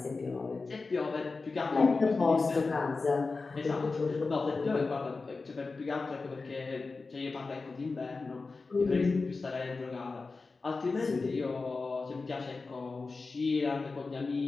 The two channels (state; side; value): quieter; right; 4.0 dB